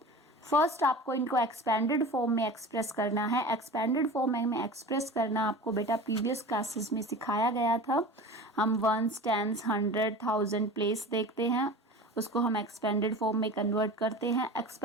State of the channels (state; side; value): normal; both; correlation 0.35